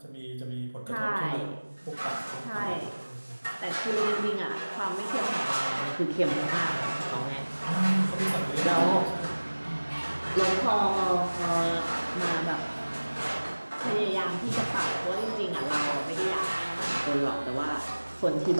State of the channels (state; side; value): inverted; both; correlation -1.00